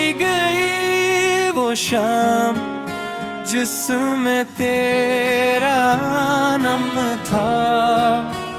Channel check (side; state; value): both; identical; correlation 1.00